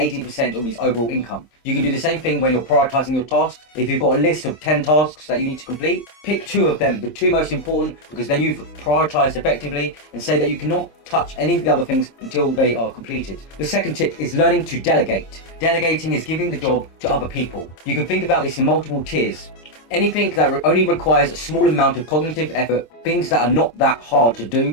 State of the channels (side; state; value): right; late; 26 ms